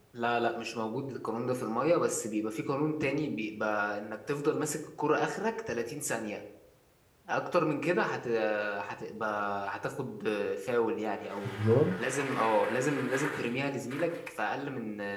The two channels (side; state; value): both; identical; correlation 1.00